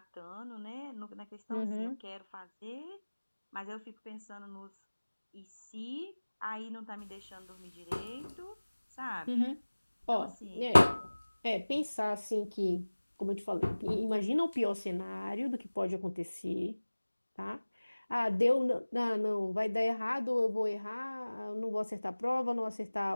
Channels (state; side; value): inverted; both; correlation -1.00